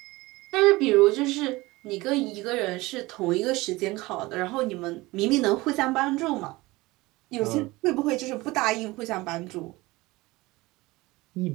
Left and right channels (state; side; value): quieter; left; 20.9 dB